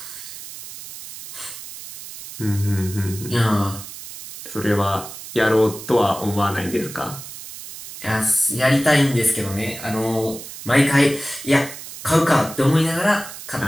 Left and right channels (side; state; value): right; noise; hiss, 13 dB below the sound